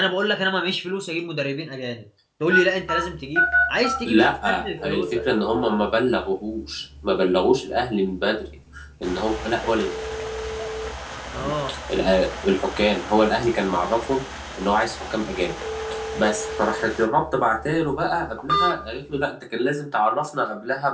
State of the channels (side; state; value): both; identical; correlation 1.00